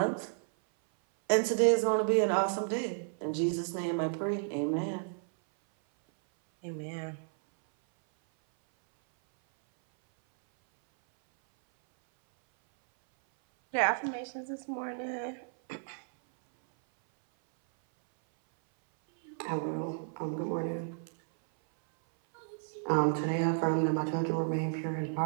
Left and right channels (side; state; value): left; silent; 56 dB below the other